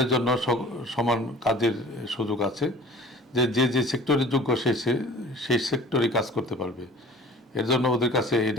জন্য সমান কাজের সুযোগ আছে, যে সেক্টরের যোগ্য সেই সেক্টরে কাজ করতে পারবে। এর জন্য ওদের কাছে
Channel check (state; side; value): normal; both; correlation 0.44